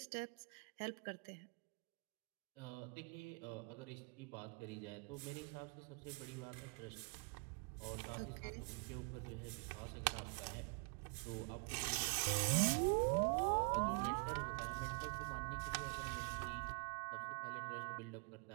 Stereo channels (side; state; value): left; quieter; 34.8 dB